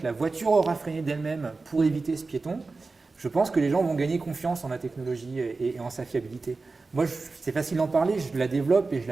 la voiture aura freiné d'elle-même pour éviter ce piéton, je pense que les gens vont gagner confiance en la technologie et en sa fiabilité. Moi, c'est facile d'en parler, je la développe et je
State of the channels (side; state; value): left; quieter; 3.9 dB